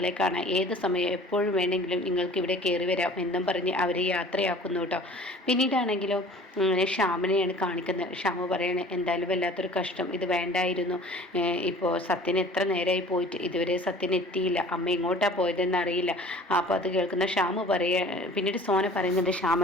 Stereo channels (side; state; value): both; normal; correlation 0.47